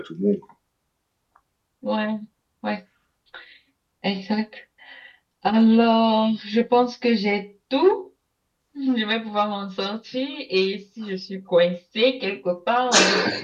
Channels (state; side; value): identical; both; correlation 1.00